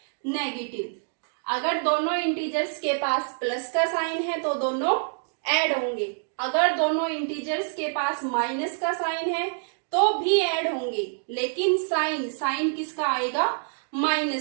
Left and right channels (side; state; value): left; silent; digital silence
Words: negative. अगर दोनों integers के पास plus का sign है तो दोनों add होंगे. अगर दोनों इंटीजर्स के पास माइनस का साइन है तो भी ऐड होंगे, लेकिन साइन किसका आएगा?